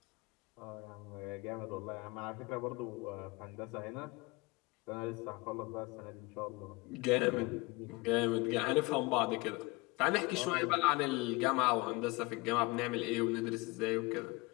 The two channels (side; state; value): right; quieter; 24.5 dB